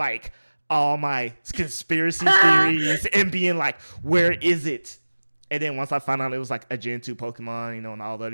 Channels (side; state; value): both; inverted; correlation -1.00